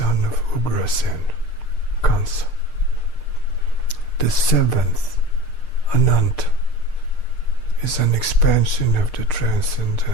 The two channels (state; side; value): late; right; 6.6 ms